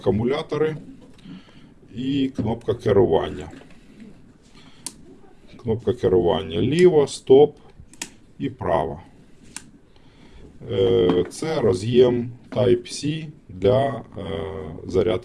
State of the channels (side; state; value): both; identical; correlation 1.00